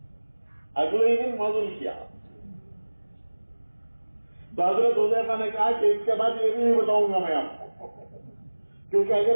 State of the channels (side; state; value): both; inverted; correlation -1.00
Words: اگلے ہی دن معذور کیا. تو حضرت حذیفہ نے کہا کہ اس کے بعد یہ بھی نہیں بتاؤں گا میں آپ کو, کیونکہ